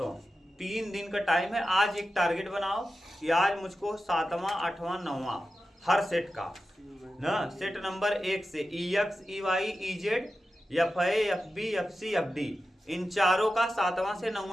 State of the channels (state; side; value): normal; both; correlation 0.92